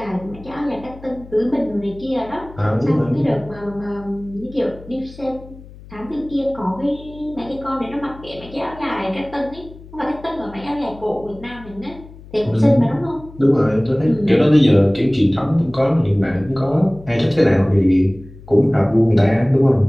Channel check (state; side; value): noise; left; hum, 19 dB below the sound